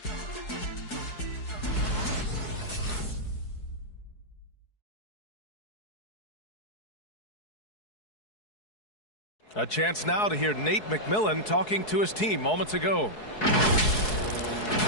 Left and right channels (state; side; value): late; right; 4.7 ms